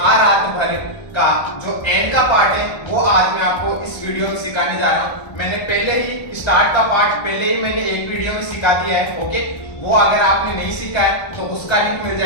रात भर का जो एंड का पार्ट है वो आज मैं आपको इस वीडियो में सिखाने जा रहा हूँ। मैंने पहले ही स्टार्ट का पार्ट पहले ही मैंने एक वीडियो में सिखा दिया है। ओके, वो अगर आपने नहीं सीखा है तो उसका लिंक मिल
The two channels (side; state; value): right; late; 1.3 ms